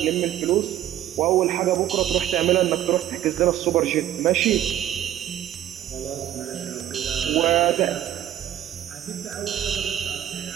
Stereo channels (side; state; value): left; quieter; 12.0 dB